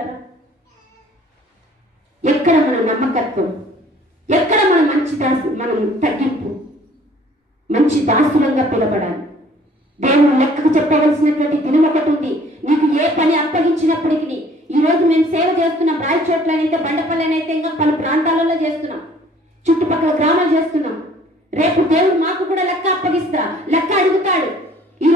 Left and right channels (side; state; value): both; normal; correlation 0.55